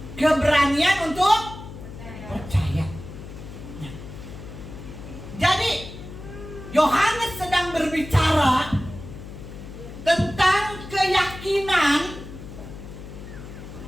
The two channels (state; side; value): noise; left; hum, 13 dB below the sound